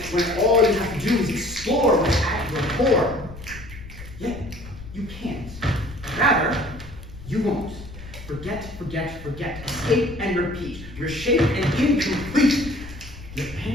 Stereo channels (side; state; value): left; noise; rumble, 14 dB below the sound